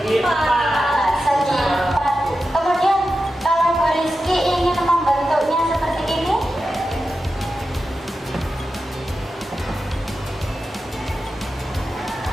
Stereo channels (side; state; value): both; normal; correlation 0.91